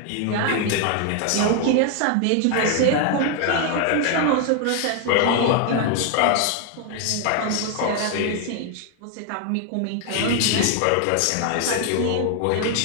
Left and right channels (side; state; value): both; different; correlation 0.00